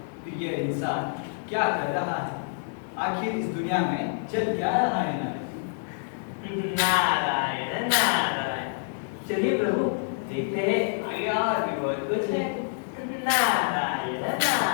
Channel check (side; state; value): right; silent; digital silence